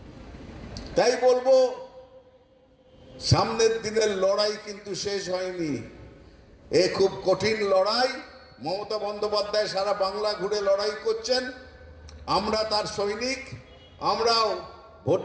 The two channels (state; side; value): identical; both; correlation 1.00